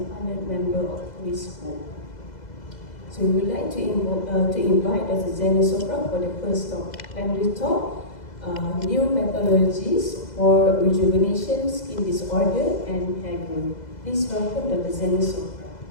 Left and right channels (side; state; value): right; late; 2.0 ms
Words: honored member of toIELLIOS. So we would like to invite Dr. Xanya Sofra for the first talk. Plenary talk, new methodologies for rejuvenation, skin disorder, and hair growth. Please welcome Dr. Xanya Sofra.